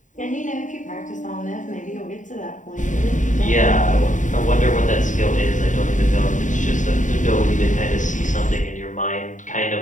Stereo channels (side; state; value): right; late; 0.36 ms